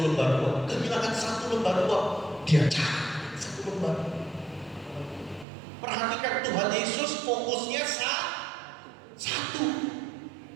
uang. Kehilangan 1 lembar uang, dia cari 1 lembar. Perhatikan, Tuhan Yesus fokusnya 1.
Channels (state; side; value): drops out; left; at 5.5 s